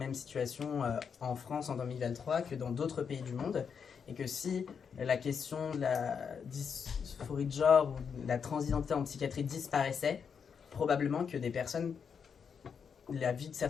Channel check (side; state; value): right; quieter; 6.6 dB